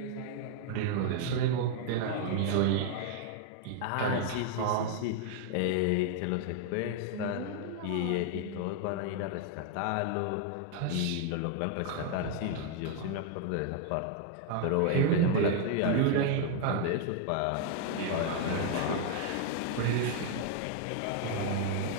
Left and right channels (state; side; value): different; both; correlation 0.00